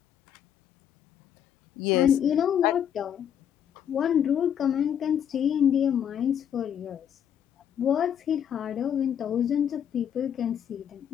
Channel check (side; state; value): right; quieter; 9.1 dB